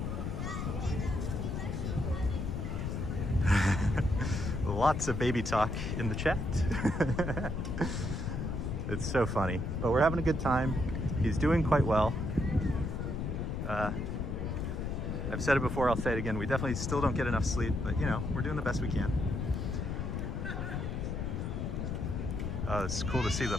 Lots of baby talk in the chat. It's so funny, but we're having a good time. He's doing quite well. I've said it before, I'll say it again. We definitely still don't get enough sleep, but you know, we're doing the best we can. It's cool to see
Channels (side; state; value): left; noise; rumble, 2 dB below the sound